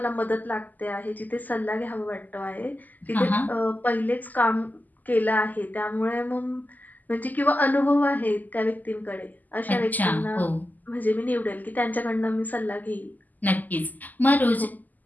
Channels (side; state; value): right; late; 0.083 ms